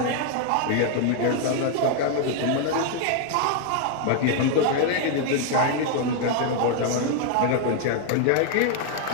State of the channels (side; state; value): both; different; correlation 0.00